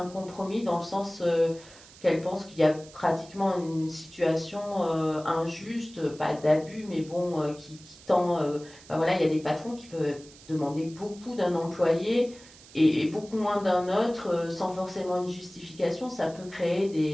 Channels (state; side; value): noise; right; hiss, 21 dB below the sound